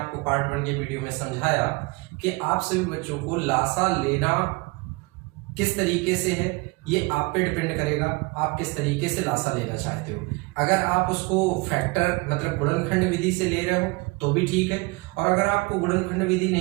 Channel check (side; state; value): left; quieter; 26.2 dB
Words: पार्ट 1 के वीडियो में समझाया कि आप सभी बच्चों को लासा लेना किस तरीके से है ये आप पे डिपेंड करेगा, आप किस तरीके से लासा लेना चाहते हो। अगर आप उसको फैक्टर मतलब गुणनखंड विधि से ले रहे हो तो भी ठीक है, और अगर आपको गुणनखंड विधि